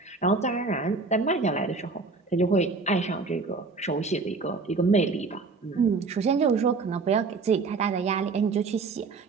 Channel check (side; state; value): left; quieter; 4.2 dB